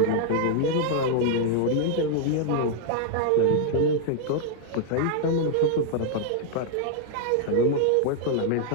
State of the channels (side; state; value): both; different; correlation -0.01